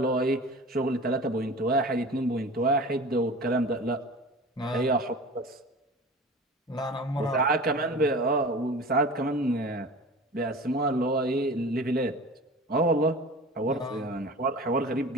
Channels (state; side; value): normal; both; correlation 0.37